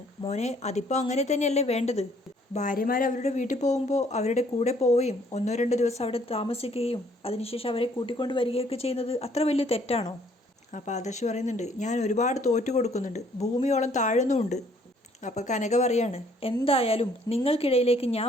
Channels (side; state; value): both; normal; correlation 0.63